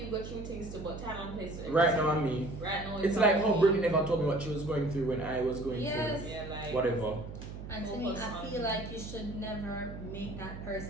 go through things too, but time and place. Right now I'm me. Right now It's like how me. Brittny never told me what she was going through when I was going Yes. through Yeah, like whatever. And to me, I feel like you should never make that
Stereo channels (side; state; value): right; noise; hum, 10 dB below the sound